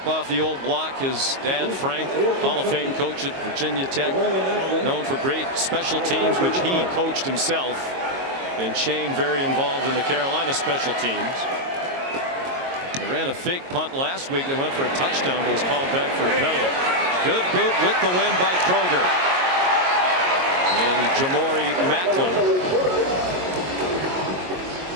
off the old block. His dad, Frank, Hall of Fame coach at Virginia Tech, known for great special teams, which he coached himself. And Shane very involved in the Carolina special teams. They ran a fake punt last week. They went for a touchdown, but was called back for a penalty. Good boot with the win by Kroger. And Jamori Macklin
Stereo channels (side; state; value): left; late; 22 ms